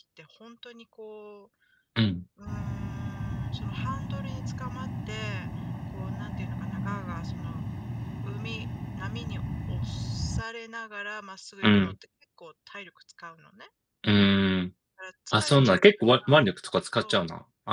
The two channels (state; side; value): identical; both; correlation 1.00